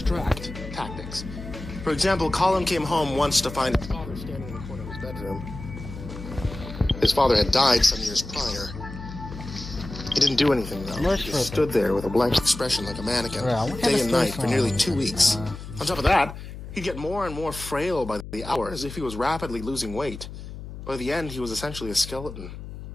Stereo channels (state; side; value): noise; left; hum, 11 dB below the sound